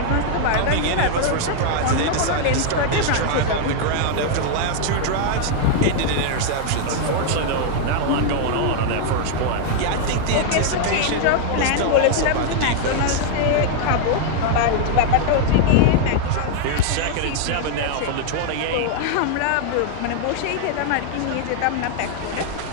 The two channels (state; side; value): different; both; correlation 0.00